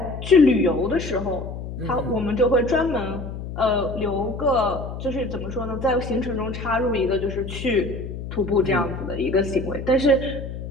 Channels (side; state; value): left; noise; hum, 8 dB below the sound